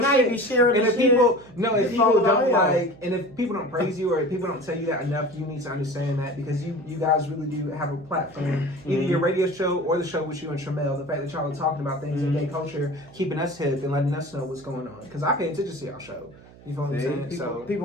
now shit. you be sharing and this if shit. people, no, if It's people all don't about like, and if people don't praise you or if people don't tell you that enough, you need to understand that because you guys really do have a platform. Either your radio show or the show with you and Tramel. The fact that y'all are talking about things in gay culture, keeping us hip and letting us know what's going on. Because I pay attention to y'all show. You feel what I'm saying?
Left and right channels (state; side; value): noise; right; hum, 22 dB below the sound